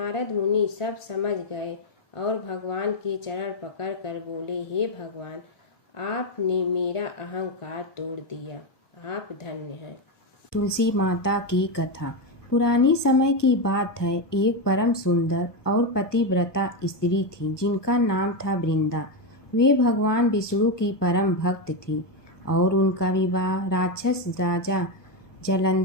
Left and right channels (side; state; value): right; late; 1.1 ms